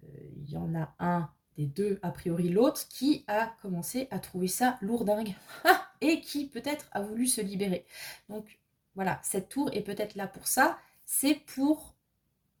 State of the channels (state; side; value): identical; both; correlation 1.00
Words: y en a un des deux, a priori l'autre, qui a commencé à trouver ça lourdingue et qui peut-être a voulu se libérer. Donc voilà, cette tour est peut-être là pour ça, c'est pour